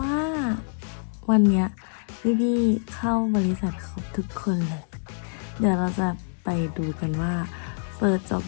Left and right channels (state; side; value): silent; right; 61 dB below the other